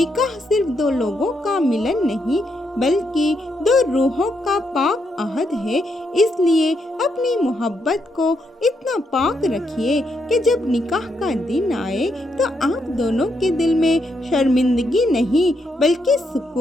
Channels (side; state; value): both; normal; correlation 0.79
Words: صرف 2 لوگوں کا ملن نہیں بلکہ 2 روحوں کا پاک عہد ہے۔ اس لیے اپنی محبت کو اتنا پاک رکھیے کہ جب نکاح کا دن آئے تو آپ دونوں کے دل میں شرمندگی نہیں بلکہ